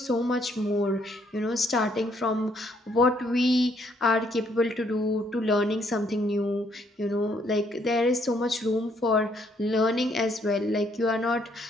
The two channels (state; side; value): normal; both; correlation 0.69